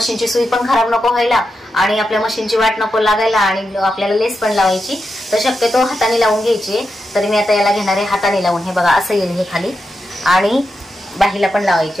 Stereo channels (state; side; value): normal; both; correlation 0.87